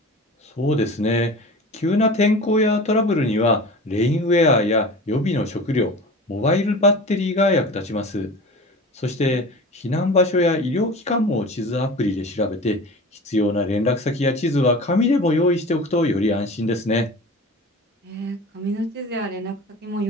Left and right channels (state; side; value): normal; both; correlation 0.36